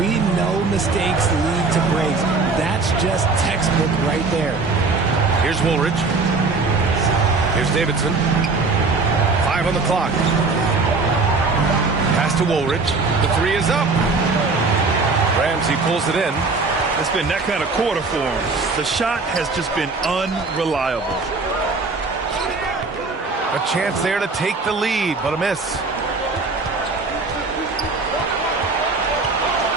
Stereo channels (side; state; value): left; quieter; 3.9 dB